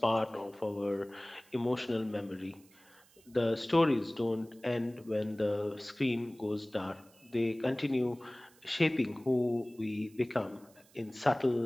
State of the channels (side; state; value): right; noise; hiss, 28 dB below the sound